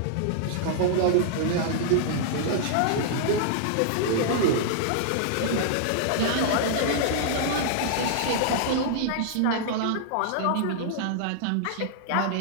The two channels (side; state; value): both; different; correlation -0.01